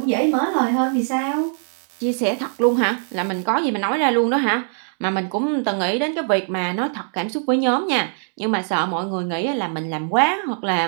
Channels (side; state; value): left; silent; digital silence